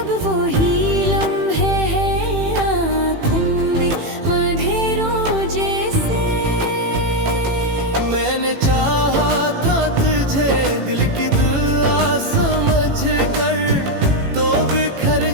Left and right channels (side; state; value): left; late; 18 ms